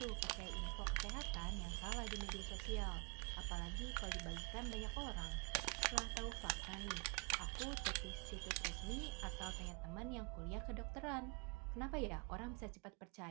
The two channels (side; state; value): left; quieter; 30.7 dB